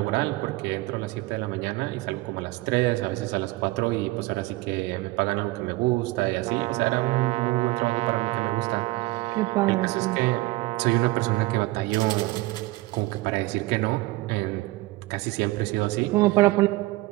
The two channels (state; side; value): quieter; left; 20.6 dB